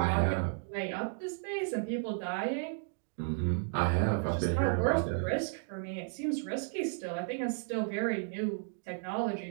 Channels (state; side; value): silent; left; digital silence